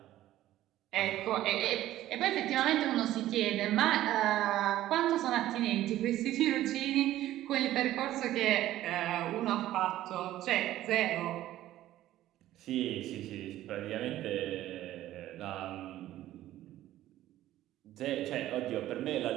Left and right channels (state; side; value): quieter; left; 14.1 dB